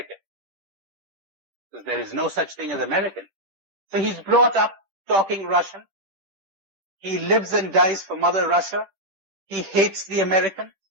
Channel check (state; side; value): late; left; 10 ms